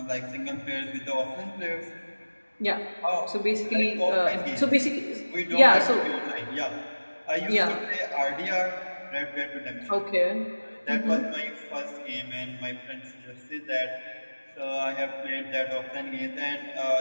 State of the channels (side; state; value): both; inverted; correlation -1.00